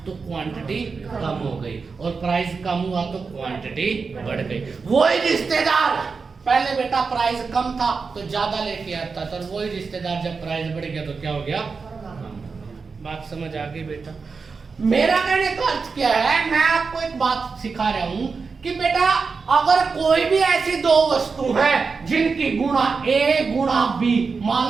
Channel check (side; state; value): left; quieter; 4.9 dB